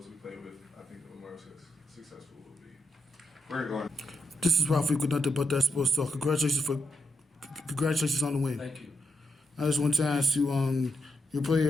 we play with, I think the more successful we'll be. Where are you going? This is Ralph with nothing but that sports talk. Congratulations on the win. Thank you. I just want to ask you, your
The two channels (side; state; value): both; normal; correlation 0.82